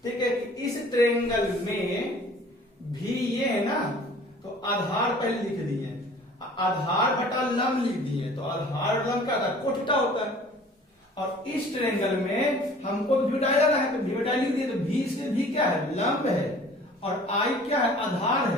ठीक है, कि इस ट्रायंगल में भी ये है ना, तो आधार पहले लिख दिए, आधार बटा लंब लिख दिए, तो आधार लंब क्या होता है, कोट थीटा होता है। और इस ट्रायंगल में हमको v बटा जाना है, तो v बटा लिख दिए, तो v से v क्या है, लंब है, और I क्या है, आधार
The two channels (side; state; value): both; normal; correlation 0.49